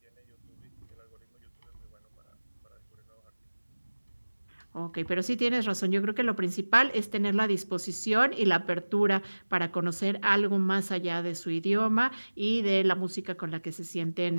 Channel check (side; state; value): both; inverted; correlation -1.00